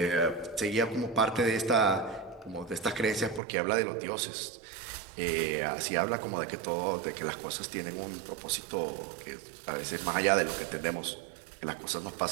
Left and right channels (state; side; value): drops out; left; at 3.4 s